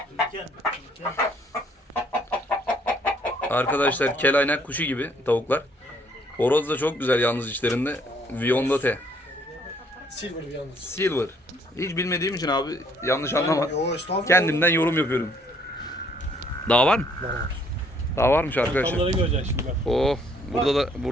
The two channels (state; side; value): normal; both; correlation 0.64